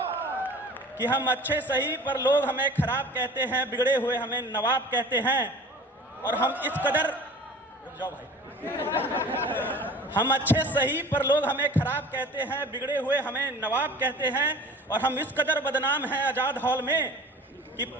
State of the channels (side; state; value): both; normal; correlation 0.43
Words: कि हम अच्छे सही पर लोग हमें खराब कहते हैं, बिगड़े हुए हमें नवाब कहते हैं। और हम इस कदर, जाओ भाई, हम अच्छे सही पर लोग हमें खराब कहते हैं, बिगड़े हुए हमें नवाब कहते हैं। और हम इस कदर बदनाम हैं आजाद हॉल में कि